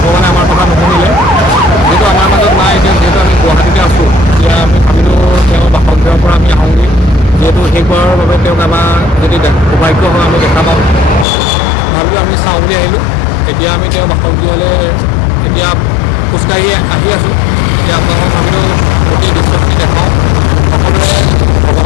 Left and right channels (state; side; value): drops out; right; at 11.2 s